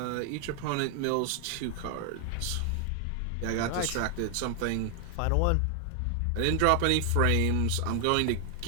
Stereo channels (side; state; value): both; different; correlation 0.00